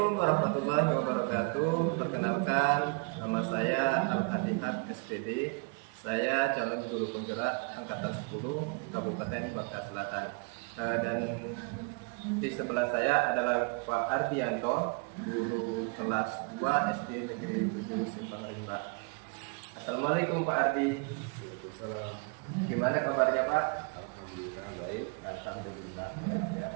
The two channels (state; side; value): quieter; left; 33.2 dB